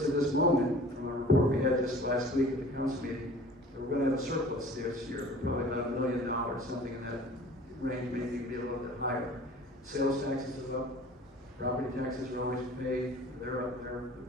at this moment, from our report we had just last week at the council meeting, that we're going to have a surplus this year, probably about $1 million, something in that range, maybe be a little bit higher. Sales taxes are up, property taxes are always paid, they're up,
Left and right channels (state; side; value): normal; both; correlation 0.46